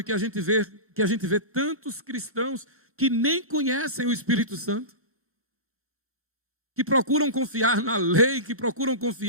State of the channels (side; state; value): left; late; 1.2 ms